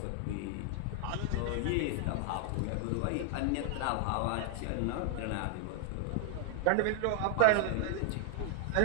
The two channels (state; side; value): different; both; correlation 0.00